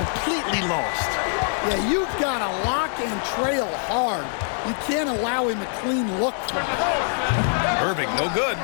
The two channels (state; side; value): silent; right; 61 dB below the other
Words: lost. Yeah, you've got to lock and trail hard. You can't allow him a clean look from it. Irving, no good.